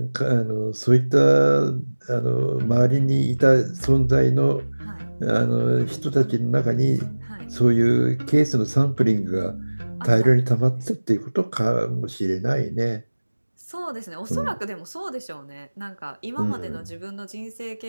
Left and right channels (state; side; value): inverted; both; correlation -1.00